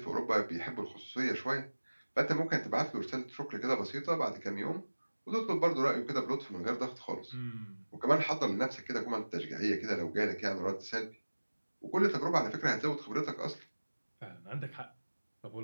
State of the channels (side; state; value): both; inverted; correlation -1.00